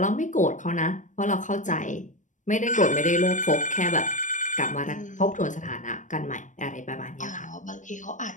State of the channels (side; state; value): right; late; 0.37 ms